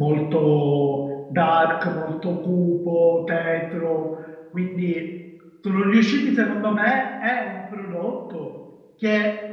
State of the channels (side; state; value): both; identical; correlation 1.00